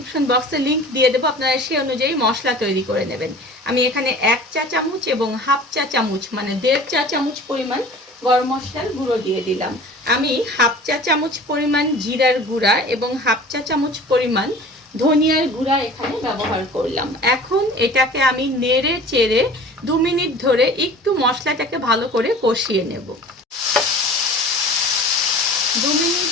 বক্সে লিংক দিয়ে দেবো, আপনারা সেই অনুযায়ী মশলা তৈরি করে নেবেন। আমি এখানে 1 চা চামচ এবং হাফ চা চামচ মানে 1.5 চা চামচ পরিমাণ গরম মশলার গুঁড়ো দিয়ে দিলাম। আমি হাফ চা চামচ পরিমাণ জিরার গুঁড়া এবং হাফ চা চামচ পরিমাণ ধনিয়ার গুঁড়া এখানে ব্যবহার করলাম। এখন এটাকে আমি নেড়ে চেড়ে 2 মিনিট ধরে একটু মশলাটাকে ভালো করে কষিয়ে নেব। 2 মিনিট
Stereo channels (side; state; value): both; normal; correlation 0.42